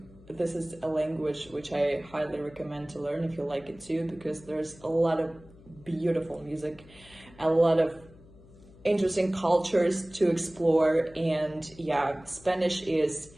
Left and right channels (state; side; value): noise; left; hum, 23 dB below the sound